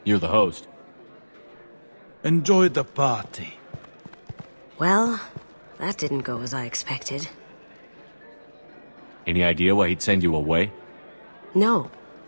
You're the host. Enjoy the party. Well, that didn't go as I expected. Any idea why he'd send you away? No,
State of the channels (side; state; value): both; inverted; correlation -1.00